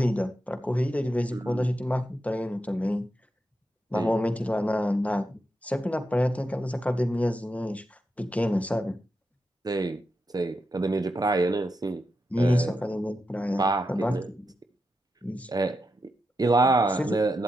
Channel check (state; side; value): normal; both; correlation 0.86